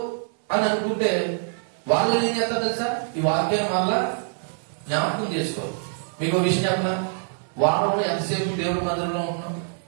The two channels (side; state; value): left; silent; 60 dB below the other